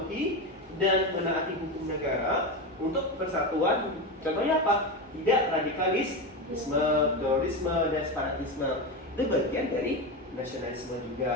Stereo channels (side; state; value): both; normal; correlation 0.18